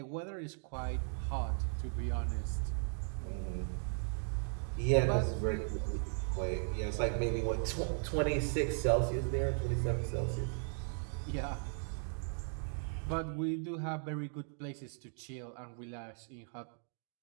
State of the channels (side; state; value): left; silent; 53 dB below the other